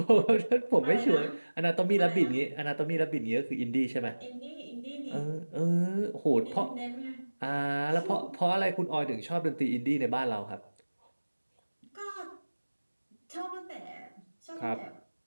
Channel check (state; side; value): inverted; both; correlation -1.00